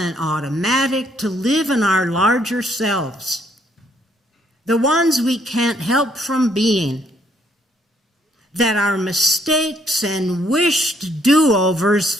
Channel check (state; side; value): normal; both; correlation 0.69